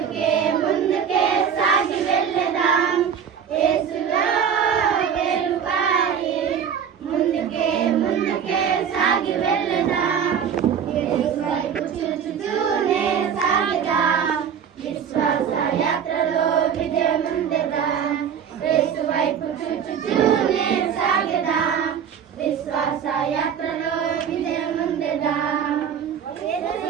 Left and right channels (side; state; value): left; quieter; 7.8 dB